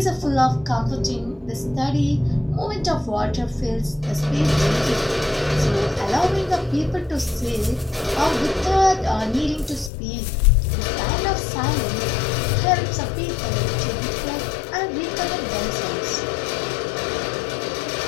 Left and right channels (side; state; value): right; drops out; at 9.9 s